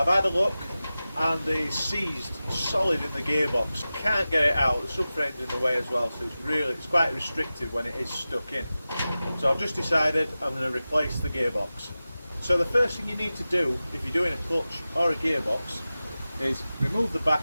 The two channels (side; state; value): both; inverted; correlation -0.95